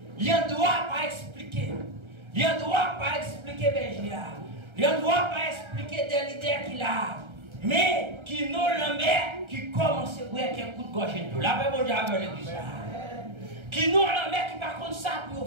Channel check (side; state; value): left; late; 1.3 ms